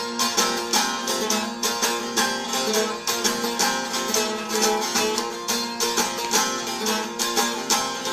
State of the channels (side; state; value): both; identical; correlation 1.00